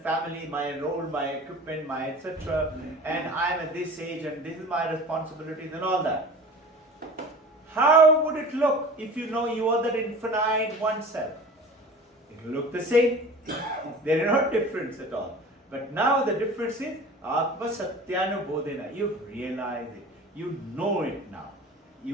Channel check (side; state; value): both; normal; correlation 0.39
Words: family, my role, my equipment, my etc. And I am at this age and this is my responsibilities and all that. How would it look if you know you are that infinite oneself? It will look the same. There are no difference at all. But now the difference is Atma Satyanu Bodhena. You realize it. You know it now.